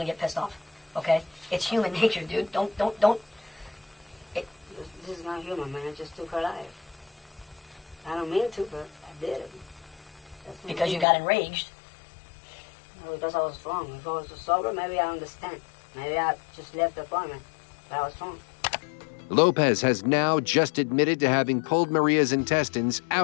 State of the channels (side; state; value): right; drops out; at 11.1 s